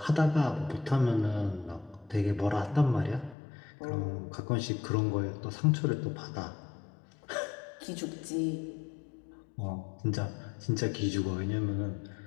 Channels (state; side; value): drops out; right; at 3.4 s